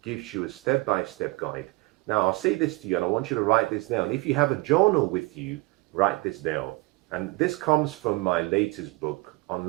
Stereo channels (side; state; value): left; quieter; 23.7 dB